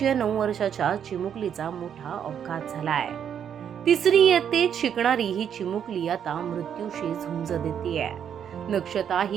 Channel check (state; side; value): quieter; left; 8.6 dB